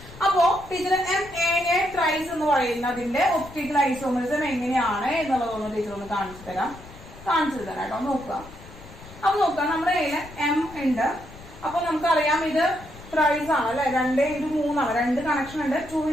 അപ്പോ ടീച്ചർ MAA thrice എന്ന് പറയുന്നതിന്റെ ഒപ്റ്റിക്കൽ ഐസോമെറിസം എങ്ങനെയാണ് എന്നുള്ളതൊന്ന് ടീച്ചർ ഒന്ന് കാണിച്ചു തരാം കേട്ടോ. നോക്കുക. അപ്പൊ നോക്കുക, നമ്മുടെ കയ്യില് M ഉണ്ട്. അപ്പൊ നമുക്കറിയാം ഇത് ത്രൈസ് ആണ് അല്ലെ, 2x3 ആണ്, 2 കണക്ഷൻ ഉണ്ട്.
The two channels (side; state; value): left; noise; rumble, 18 dB below the sound